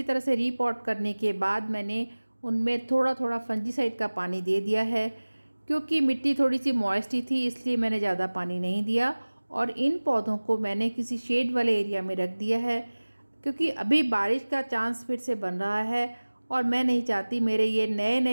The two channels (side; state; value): both; inverted; correlation -1.00